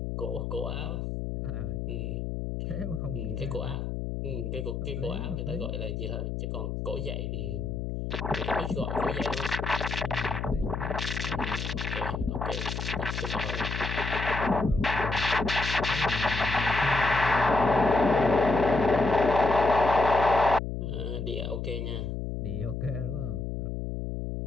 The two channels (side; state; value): left; noise; hum, 4 dB below the sound